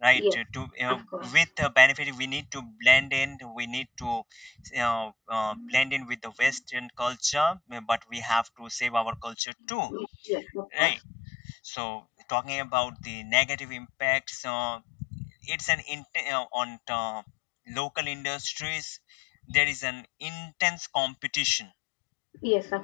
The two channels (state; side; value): drops out; right; at 9.3 s